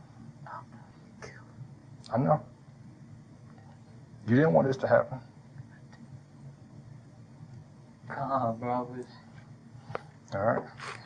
I know. You didn't want this to happen. Come on, bro. All right.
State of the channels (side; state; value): both; identical; correlation 1.00